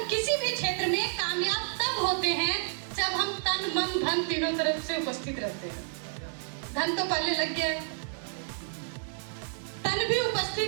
किसी भी क्षेत्र में कामयाब तब होते हैं जब हम तन मन धन तीनों तरफ से उपस्थित रहते हैं। धन तो पहले लग गया है, तन भी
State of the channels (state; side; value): silent; left; digital silence